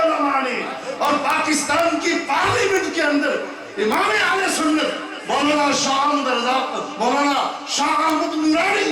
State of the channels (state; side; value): identical; both; correlation 1.00